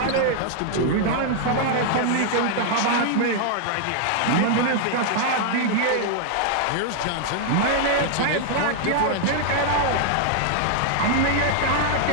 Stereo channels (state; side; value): different; both; correlation 0.00